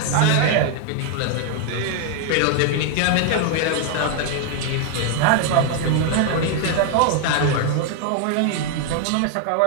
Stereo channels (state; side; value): different; both; correlation 0.00